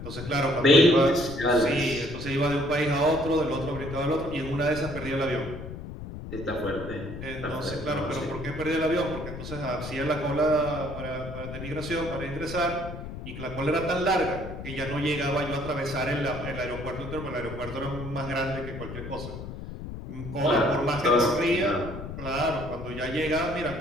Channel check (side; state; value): left; noise; rumble, 9 dB below the sound